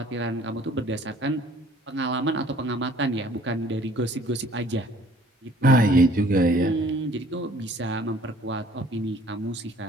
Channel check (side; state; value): both; normal; correlation 0.55